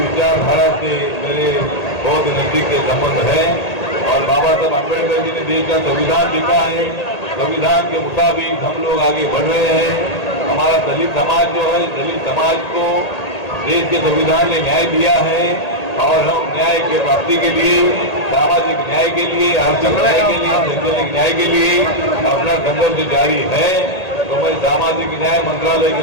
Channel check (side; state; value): right; late; 1.8 ms